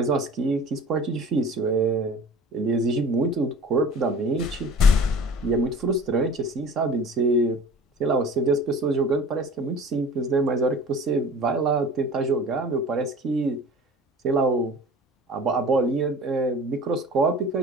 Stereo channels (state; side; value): normal; both; correlation 0.41